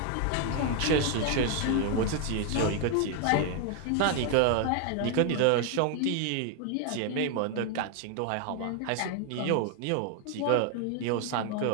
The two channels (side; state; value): both; different; correlation 0.01